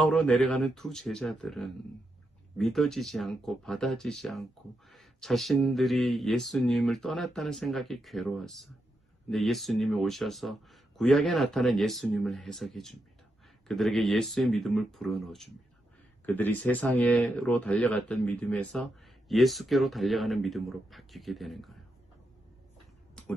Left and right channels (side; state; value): both; normal; correlation 0.84